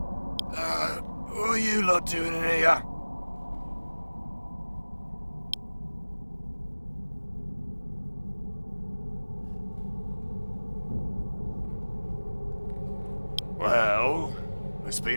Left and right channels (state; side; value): inverted; both; correlation -1.00